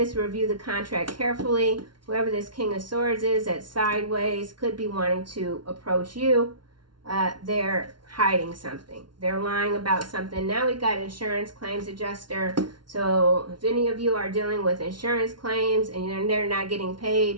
Review the contract carefully. Whoever this King of Swords is at sideways could be wanting to approach you. They're hiding something. They're lying about something. Now we got insurance claims adjuster. So if any of you are dealing with insurance claims and they're not getting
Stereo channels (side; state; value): left; late; 0.71 ms